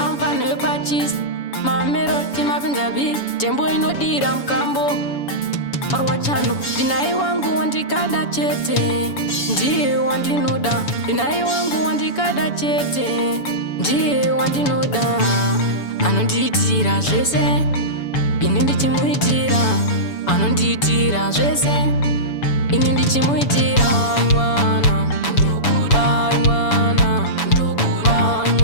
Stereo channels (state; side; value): late; right; 7.0 ms